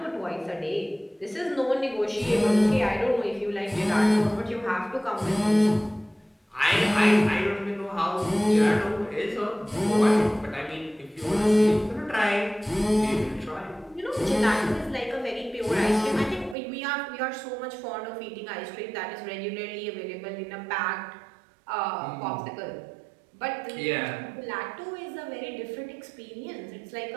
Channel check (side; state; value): left; drops out; at 16.6 s